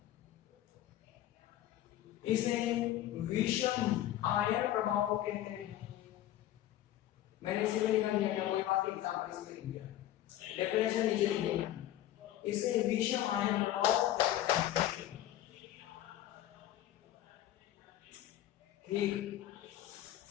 इसे विषम आयन प्रभाव कहते हैं। मैंने इसे भी लिखा दिया है, कोई बात एग्जाम्पल इसमें लिख दिया, डेफिनेशन नीचे लिख दिया। इसे विषम आयन प्रभाव कहते हैं। ठीक,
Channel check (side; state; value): right; quieter; 13.2 dB